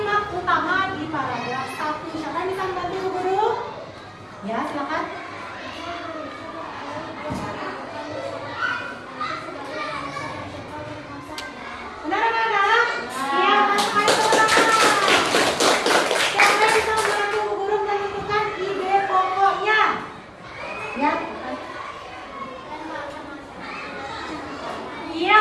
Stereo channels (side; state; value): both; identical; correlation 1.00